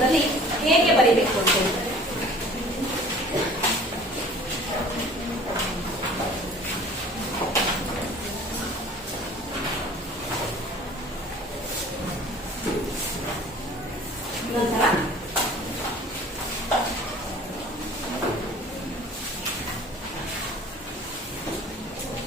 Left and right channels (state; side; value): normal; both; correlation 0.48